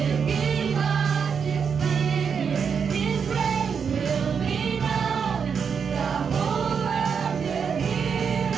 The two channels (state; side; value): quieter; left; 6.5 dB